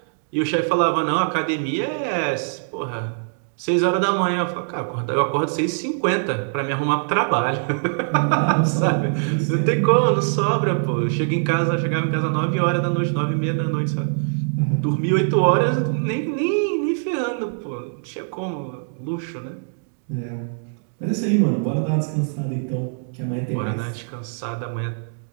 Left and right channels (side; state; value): left; silent; digital silence